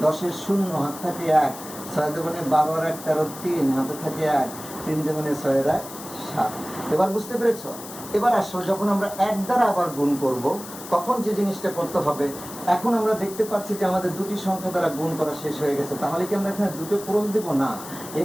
10 এর 0 হাত থাকে 1, 6 দুগুণে 12 আর 1 13 3 হাতে থাকে 1, 3 দুগুণে 6 এর 1 7। এবার বুঝতে পেরেছ? এবার আসো, যখন আমরা 1 দ্বারা আবার গুণ করব তখন যে জিনিসটা করতে হবে, এখন আমরা দেখতে পাচ্ছি যে আমাদের দুটি সংখ্যা দ্বারা গুণ করা শেষ হয়ে গেছে। তাহলে কি আমরা এখানে দুটো ক্রস দেব? না,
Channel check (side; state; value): left; noise; hiss, 13 dB below the sound